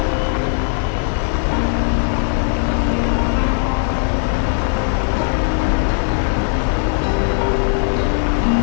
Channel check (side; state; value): right; silent; 60 dB below the other